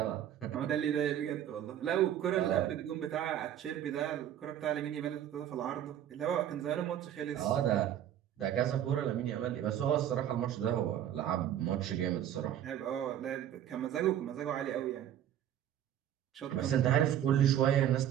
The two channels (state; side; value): quieter; left; 10.8 dB